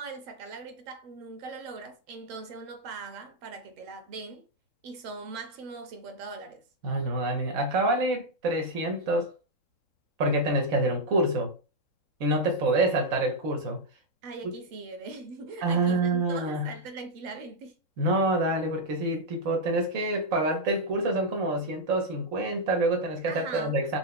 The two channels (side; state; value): left; late; 3.7 ms